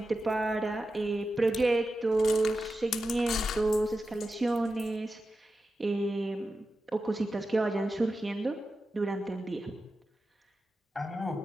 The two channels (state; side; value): normal; both; correlation 0.91